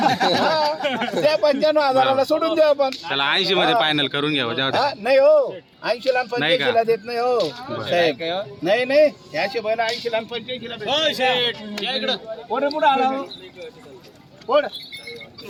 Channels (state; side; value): identical; both; correlation 1.00